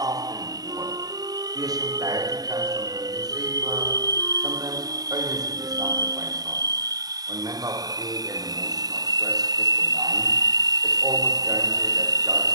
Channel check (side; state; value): left; late; 0.18 ms